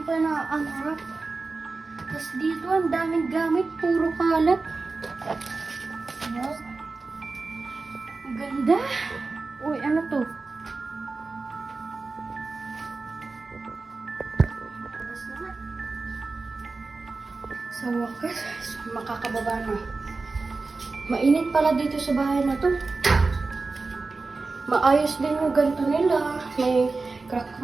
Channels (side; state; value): left; quieter; 3.9 dB